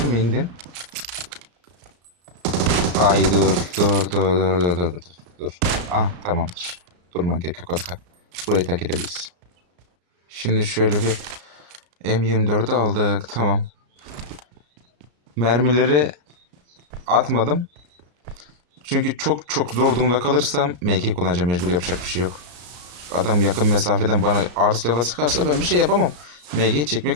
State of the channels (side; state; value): left; late; 34 ms